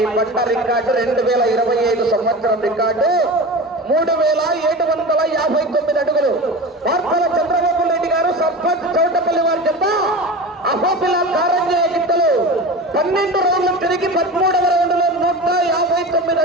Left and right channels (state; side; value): normal; both; correlation 0.30